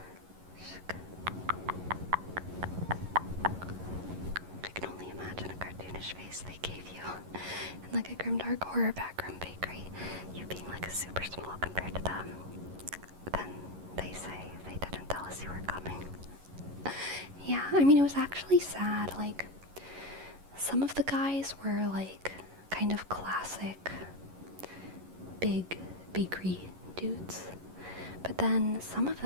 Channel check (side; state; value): left; late; 11 ms